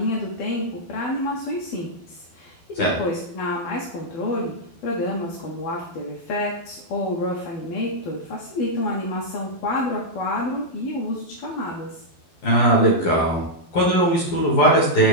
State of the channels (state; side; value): late; right; 12 ms